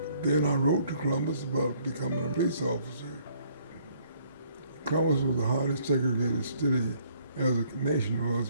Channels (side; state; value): both; inverted; correlation -0.63